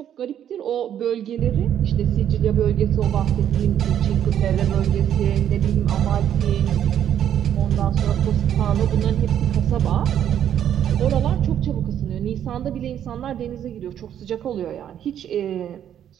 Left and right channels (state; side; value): quieter; left; 10.0 dB